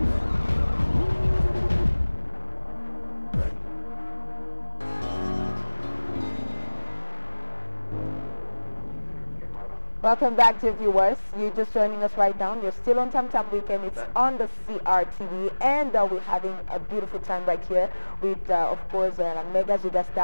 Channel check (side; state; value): both; inverted; correlation -1.00